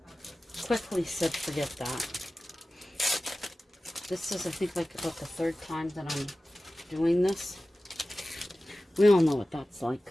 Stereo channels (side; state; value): both; normal; correlation 0.96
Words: quickly said forget that. This is, I think, like about the third time that I'm doing this. We all know what that's